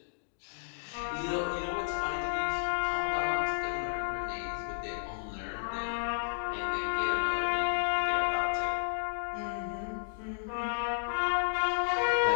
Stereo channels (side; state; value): right; silent; digital silence